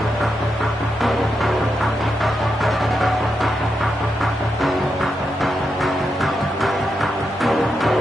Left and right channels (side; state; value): both; normal; correlation 0.85